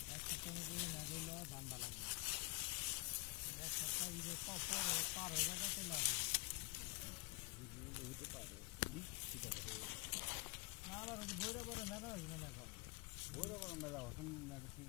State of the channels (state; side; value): quieter; right; 29.5 dB